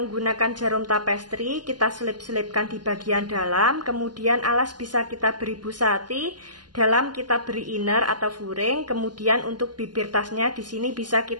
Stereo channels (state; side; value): late; left; 0.70 ms